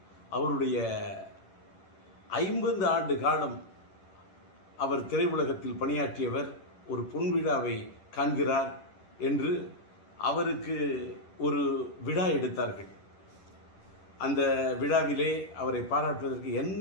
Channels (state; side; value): late; right; 11 ms